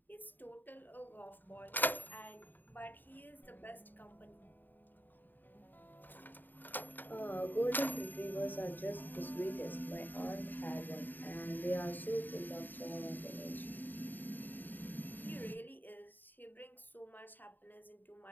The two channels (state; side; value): late; right; 0.090 ms